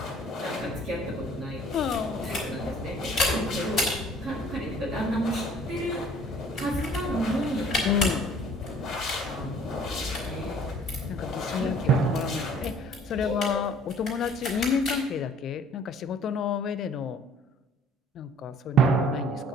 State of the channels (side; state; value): both; normal; correlation 0.53